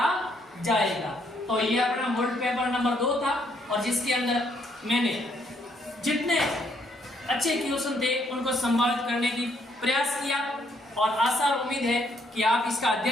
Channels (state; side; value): normal; both; correlation 0.70